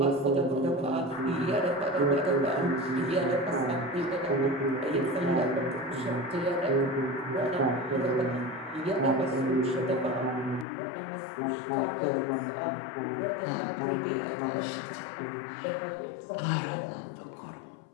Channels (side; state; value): right; drops out; at 10.7 s